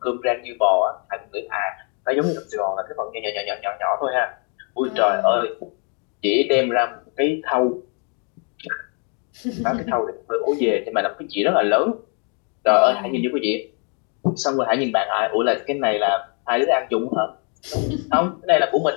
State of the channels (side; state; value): right; quieter; 37.8 dB